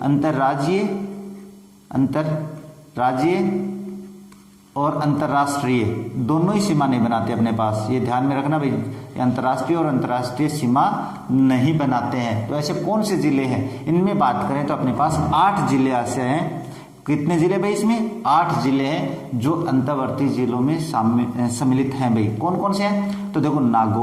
अंतर्राज्यीय और अंतर्राष्ट्रीय दोनों ही सीमा नहीं बनाते अपने पास, ये ध्यान में रखना भाई, अंतर्राष्ट्रीय और अंतर्राष्ट्रीय सीमा नहीं बनाते हैं। तो ऐसे कौन से जिले हैं, इनमें बात करें तो अपने पास 8 जिले ऐसे हैं। कितने जिले भाई, इसमें 8 जिले हैं जो अंतर्वर्ती जिलों में सम्मिलित हैं भाई। कौन कौन से हैं, तो देखो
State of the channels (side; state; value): both; identical; correlation 1.00